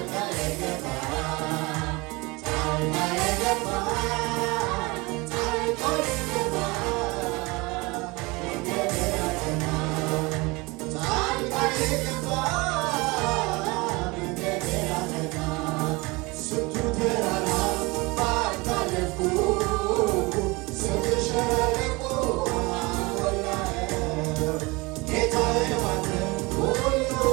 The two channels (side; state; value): left; quieter; 24.9 dB